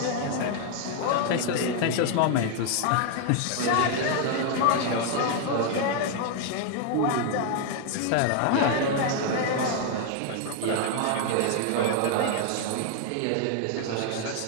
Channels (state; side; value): different; both; correlation 0.00